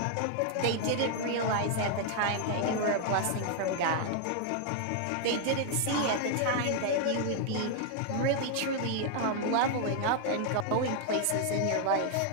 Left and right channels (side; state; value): both; different; correlation 0.00